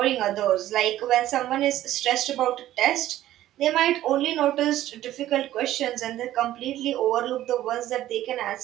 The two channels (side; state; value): left; quieter; 13.7 dB